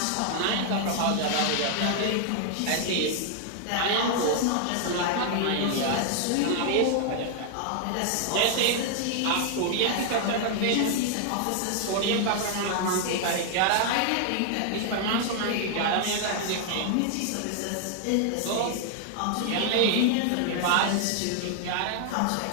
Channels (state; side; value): different; both; correlation 0.00